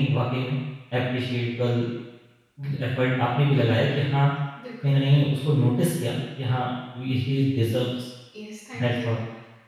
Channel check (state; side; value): identical; both; correlation 1.00